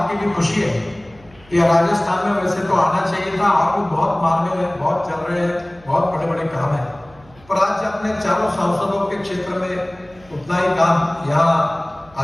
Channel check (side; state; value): right; noise; hum, 26 dB below the sound